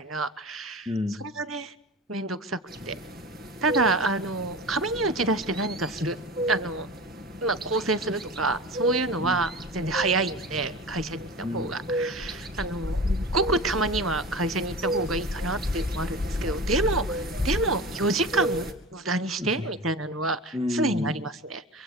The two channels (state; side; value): normal; both; correlation 0.33